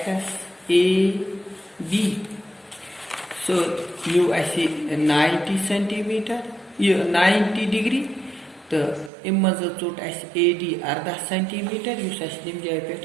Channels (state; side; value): drops out; left; at 9.1 s